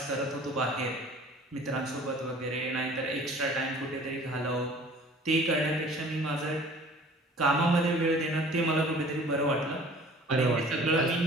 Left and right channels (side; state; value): both; normal; correlation 0.49